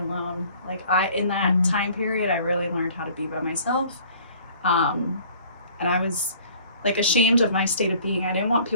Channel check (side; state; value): both; inverted; correlation -0.53